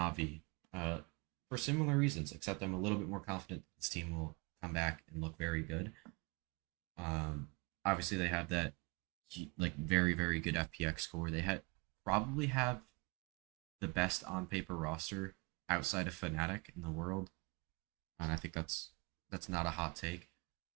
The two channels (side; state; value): left; quieter; 28.0 dB